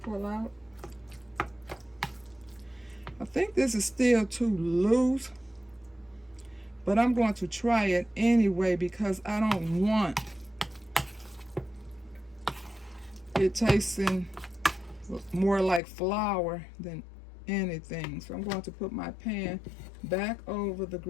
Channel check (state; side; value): drops out; right; at 15.8 s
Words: pull out. I think this is still too loose, but I'm going to try it anyway because I don't want it tasting more like flour than anything. So I'm going to put my pan back over the